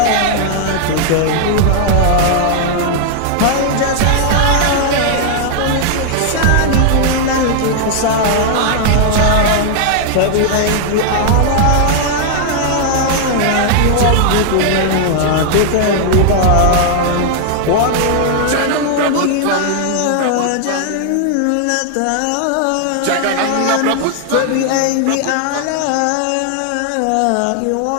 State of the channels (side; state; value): both; different; correlation 0.00